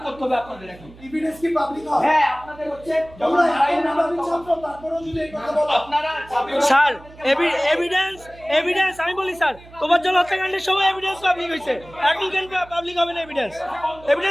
করতে হবে আপনাদের। এখন এভিডেন্স কি পাবলিক হয়? হ্যাঁ আপনাদের হচ্ছে তোমরা এত ছাত্র তারপরেও যদি এই কথা বলো, আপনারা স্যার এভিডেন্স আমি বলি স্যার, তোফাজ্জল হত্যাকাণ্ডের সময় এভিডেন্স পাবলিক হয়েছে, এখন কেন পাবলিক হবে না?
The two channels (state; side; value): noise; right; hum, 21 dB below the sound